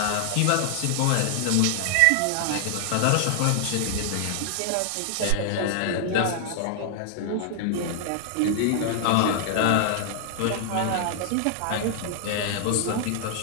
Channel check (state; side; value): different; both; correlation 0.00